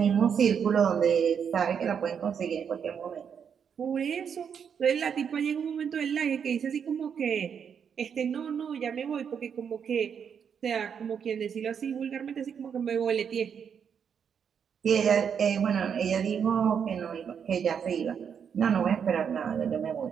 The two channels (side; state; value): left; quieter; 7.4 dB